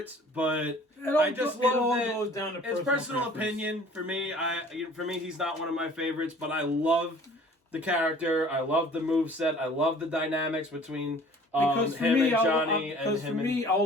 but I just love that. Goes down to It's personal opinion for me. For me, he's not one of my favorites, but I love the character. I love the moveset. I love the dynamics between because for him me, and Johnny and him and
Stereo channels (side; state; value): both; normal; correlation 0.50